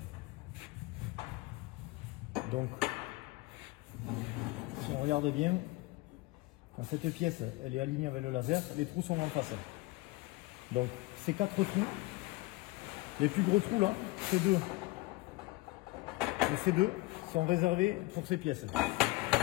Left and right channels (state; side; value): quieter; right; 21.0 dB